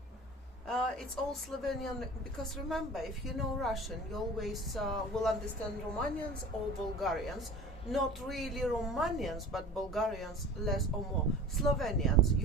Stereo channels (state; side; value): normal; both; correlation 0.40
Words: It's all Slovenian, because remember, if you know Russian, you always will understand Romanians or Bulgarians. Not really Romanians, but Bulgarians less or more. Slovenians